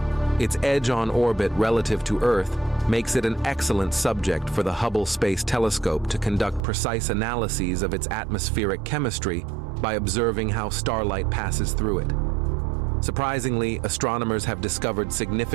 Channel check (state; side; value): drops out; left; at 6.7 s